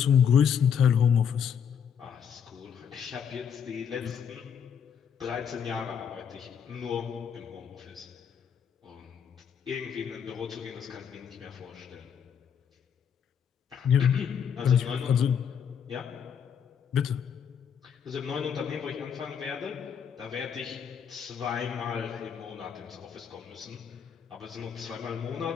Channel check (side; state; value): right; quieter; 7.7 dB